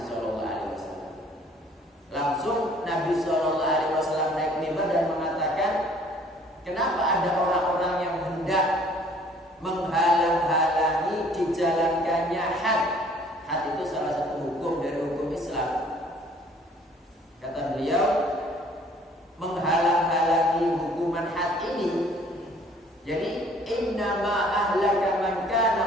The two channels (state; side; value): normal; both; correlation 0.56